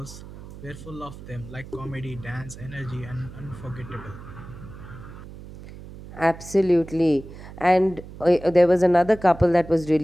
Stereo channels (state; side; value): noise; right; hum, 15 dB below the sound